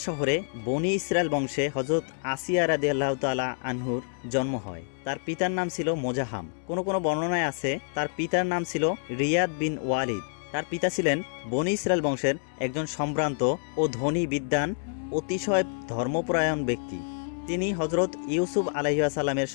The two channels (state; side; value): silent; right; 60 dB below the other